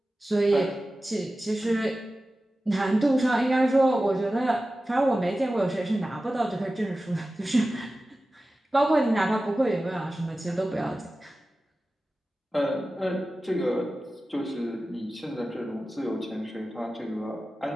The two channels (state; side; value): normal; both; correlation 0.95